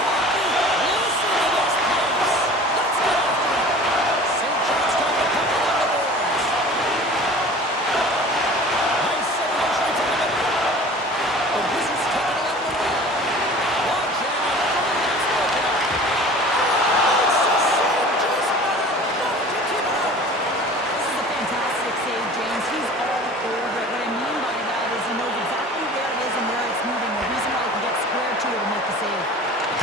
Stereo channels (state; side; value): normal; both; correlation 0.42